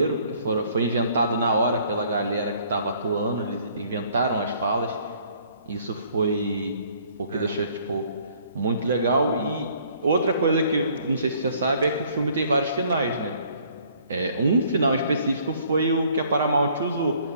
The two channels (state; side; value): inverted; both; correlation -0.60